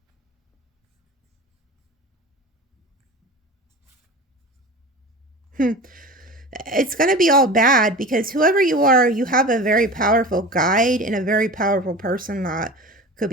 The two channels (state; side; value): normal; both; correlation 0.34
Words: It's going to be all bad because whoever you are, you have a very powerful guide and a very powerful person that could